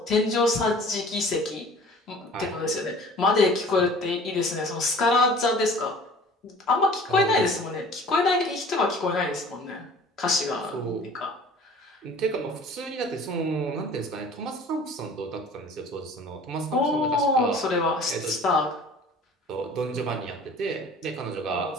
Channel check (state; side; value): normal; both; correlation 0.47